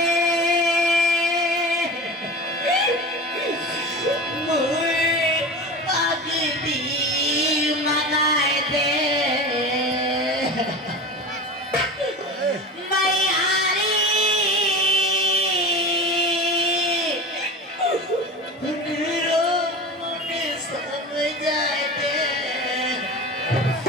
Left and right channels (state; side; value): normal; both; correlation 0.31